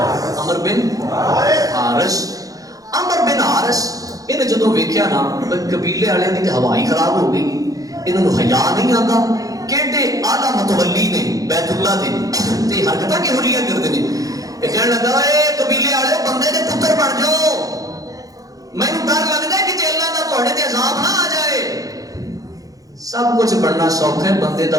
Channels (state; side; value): late; left; 0.17 ms